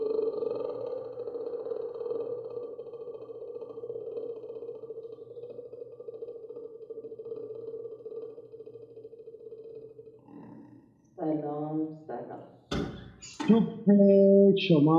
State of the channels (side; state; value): both; identical; correlation 1.00